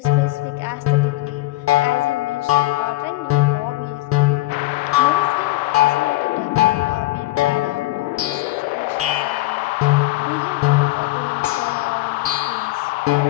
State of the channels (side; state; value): right; quieter; 18.7 dB